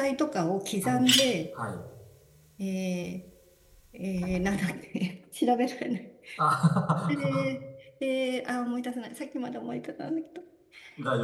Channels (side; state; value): both; identical; correlation 1.00